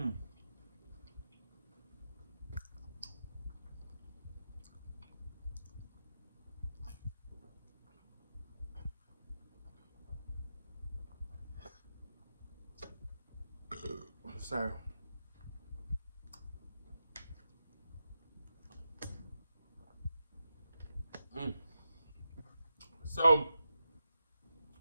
Sorry. Mm. So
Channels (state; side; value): inverted; both; correlation -0.89